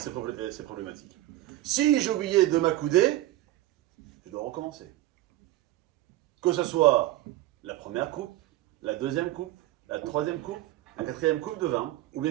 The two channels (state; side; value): quieter; left; 15.9 dB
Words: problématique. Si j'ai oublié de m'accouder, je dois recommencer. Que ce soit la première coupe, la deuxième coupe, la troisième coupe, un quatrième coupe de vin, ou